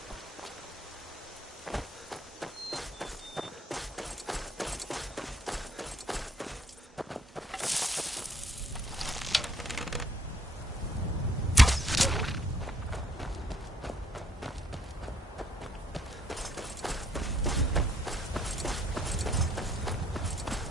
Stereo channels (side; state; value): both; normal; correlation 0.66